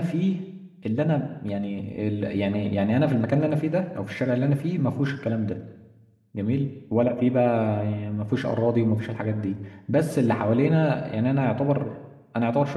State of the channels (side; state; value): both; identical; correlation 1.00